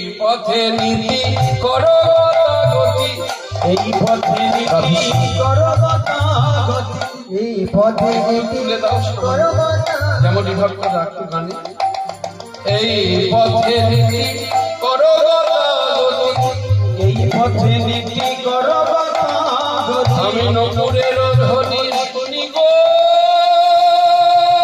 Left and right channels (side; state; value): both; identical; correlation 1.00